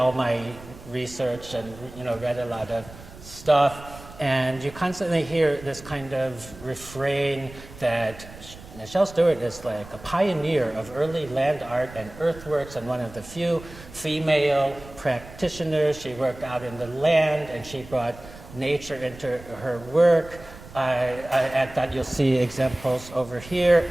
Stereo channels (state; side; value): noise; right; rumble, 18 dB below the sound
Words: my research and read a lot of stuff. And you constantly hear this kind of refrain that Michelle Stuart is like a pioneer of early land art and earthworks, and one of the few female practitioners. She worked out in the land, and she brought nature into her work. At that you'll see examples over here,